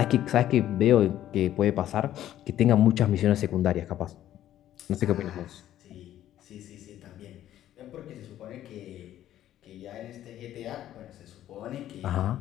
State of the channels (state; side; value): quieter; right; 12.4 dB